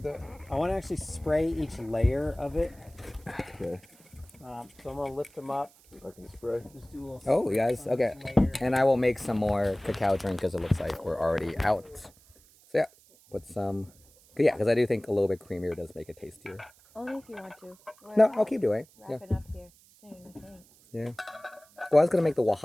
with that? I want to actually spray each layer of it. Okay. So I'm gonna lift them up. I can spray. Just do a little. Oh, you guys, okay. Layer. And I will make some more cacao drink because it looks like we're already out. So yeah, put some. Yeah, because I do think a little bit creamier does make it tastier. Only if you want to. No, I'll keep doing. Yeah. Wrap it up here soon, I think. Yeah. Well, I was gonna make the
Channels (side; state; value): right; noise; hiss, 27 dB below the sound